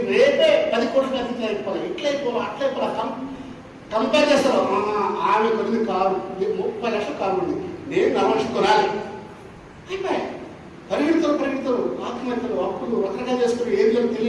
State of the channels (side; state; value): both; identical; correlation 1.00